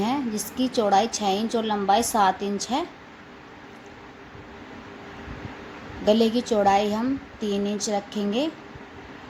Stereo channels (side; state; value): both; identical; correlation 1.00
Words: जिसकी चौड़ाई 6 इंच और लंबाई 7 इंच है। गले की चौड़ाई हम 3 इंच रखेंगे